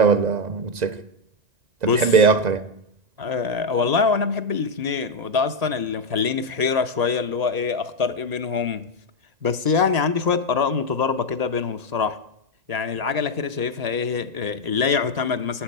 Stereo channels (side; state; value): left; late; 1.8 ms